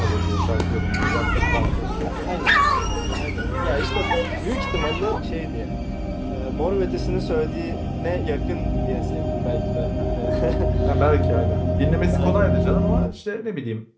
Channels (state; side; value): identical; both; correlation 1.00